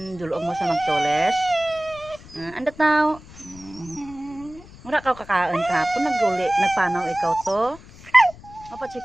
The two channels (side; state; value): left; noise; rumble, 20 dB below the sound